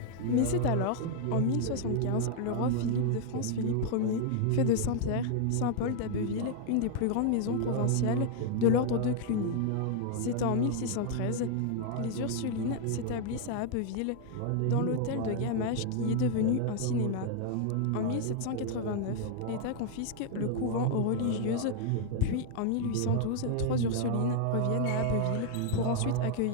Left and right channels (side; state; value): both; different; correlation 0.00